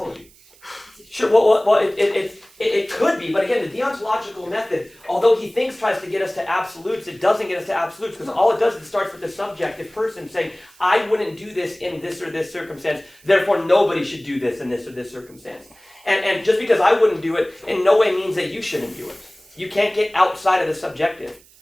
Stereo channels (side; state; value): right; noise; hiss, 27 dB below the sound